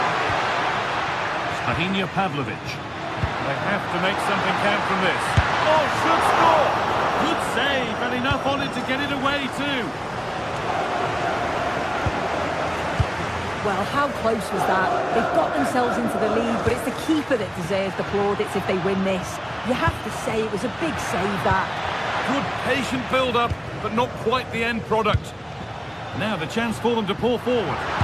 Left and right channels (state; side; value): identical; both; correlation 1.00